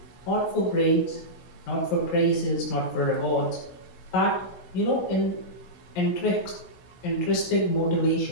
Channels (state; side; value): late; right; 16 ms